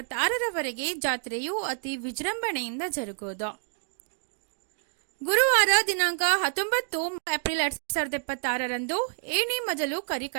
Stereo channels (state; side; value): silent; left; digital silence